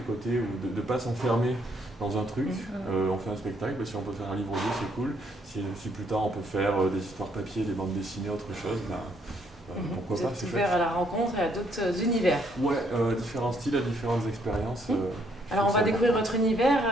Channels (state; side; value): normal; both; correlation 0.70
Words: côté de ne pas s'enfermer dans un truc. On fait un spectacle, si on peut faire un livre audio, c'est cool. Si plus tard on peut faire des histoires papier, des bandes dessinées, autre chose, pourquoi Vous pas, êtes c'est ouvert chouette. à la rencontre et à d'autres univers. Ouais, différents styles, à différentes expériences. Alors on va découvrir votre univers